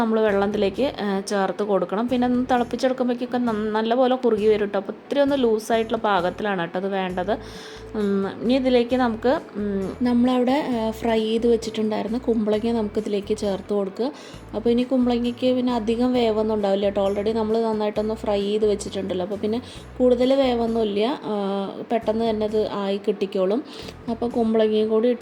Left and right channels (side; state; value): both; identical; correlation 1.00